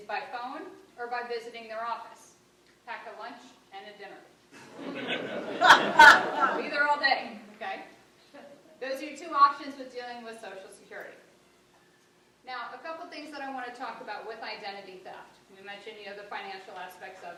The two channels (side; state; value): both; identical; correlation 1.00